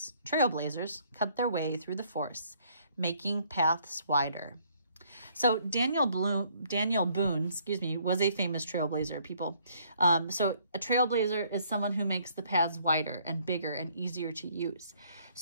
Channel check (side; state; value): both; inverted; correlation -0.65